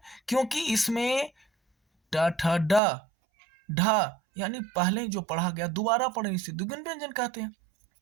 क्योंकि इसमें ट ठ ड ढ यानी पहले जो पढ़ा गया दोबारा पढ़े, इसे द्विगुण व्यंजन कहते हैं।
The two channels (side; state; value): left; drops out; at 2.8 s